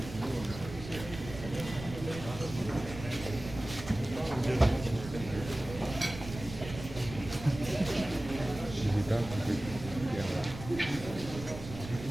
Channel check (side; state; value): right; noise; rumble, 11 dB below the sound